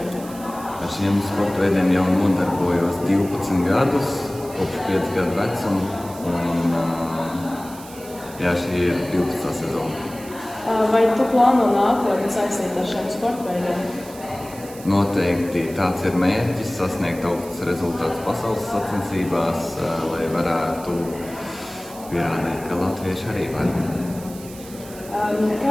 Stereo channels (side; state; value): right; noise; hiss, 18 dB below the sound